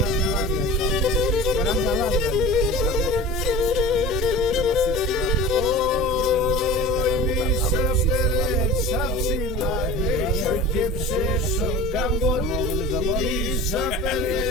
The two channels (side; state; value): both; normal; correlation 0.37